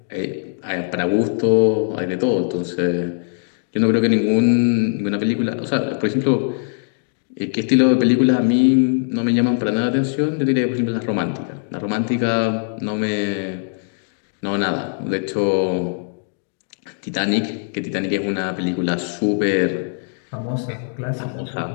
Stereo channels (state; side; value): silent; right; 65 dB below the other